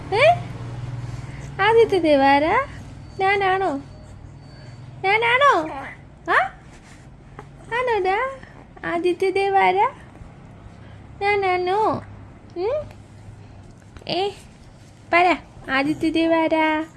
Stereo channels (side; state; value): both; identical; correlation 1.00